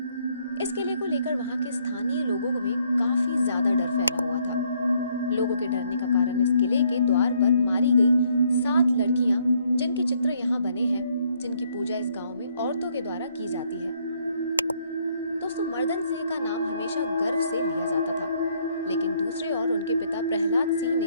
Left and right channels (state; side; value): inverted; both; correlation -0.69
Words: इस किले को लेकर वहां के स्थानीय लोगों में काफी ज्यादा डर फैला हुआ था। लोगों के डरने का कारण इस किले के द्वार पर मारी गई 7 लड़कियां, जिनके चित्र यहाँ बने हैं, जिनकी पूजा इस गांव में औरतों के द्वारा की जाती है। दोस्तों, मर्दन सिंह का नाम हमेशा गर्व से लिया जाता था, लेकिन दूसरे ओर उनके पिता प्रहलाद सिंह